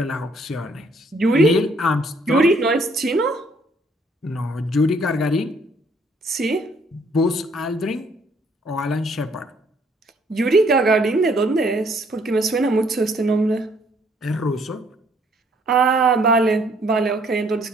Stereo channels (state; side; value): normal; both; correlation 0.65